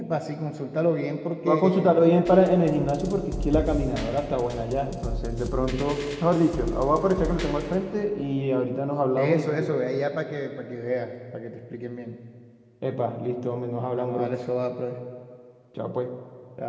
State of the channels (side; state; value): both; identical; correlation 1.00